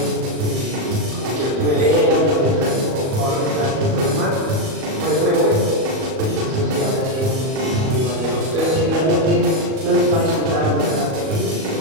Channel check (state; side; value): late; left; 38 ms